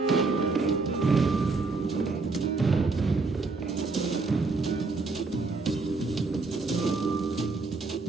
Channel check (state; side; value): quieter; left; 3.9 dB